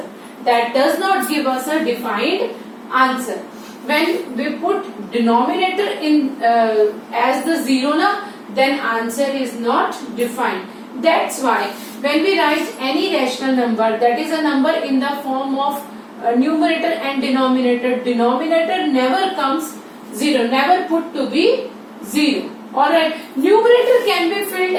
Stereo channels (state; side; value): identical; both; correlation 1.00